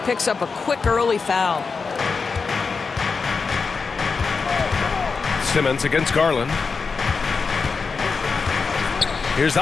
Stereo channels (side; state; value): right; quieter; 4.9 dB